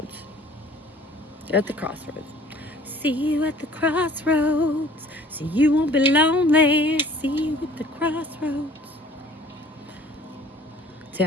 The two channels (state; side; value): normal; both; correlation 0.52